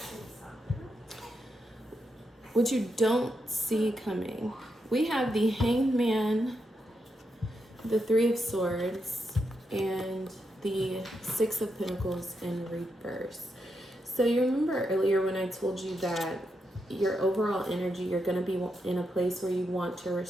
what you don't see coming, we have the Hanged Man, the Three of Swords, and the Six of Pentacles in reverse. So you remember earlier when I told you that your overall energy, you're going to be in a place where you want to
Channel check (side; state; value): both; normal; correlation 0.83